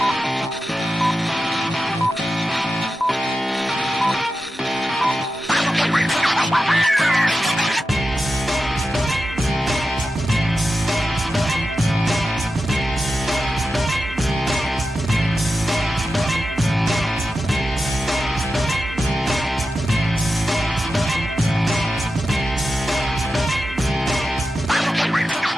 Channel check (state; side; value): normal; both; correlation 0.91